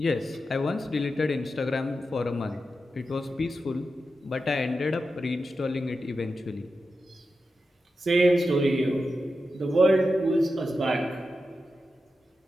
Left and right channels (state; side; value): normal; both; correlation 0.90